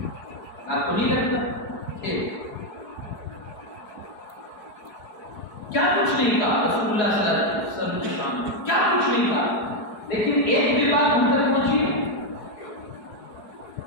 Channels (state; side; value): late; right; 4.7 ms